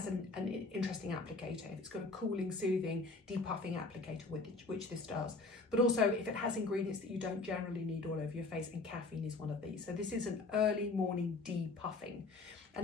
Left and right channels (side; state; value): right; quieter; 3.6 dB